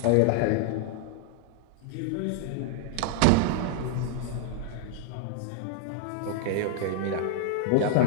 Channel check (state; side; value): different; both; correlation 0.00